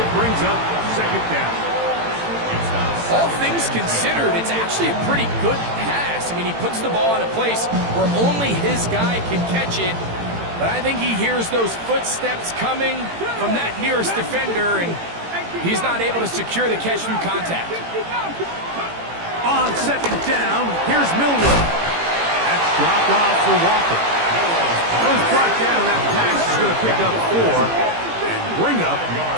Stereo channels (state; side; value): late; left; 18 ms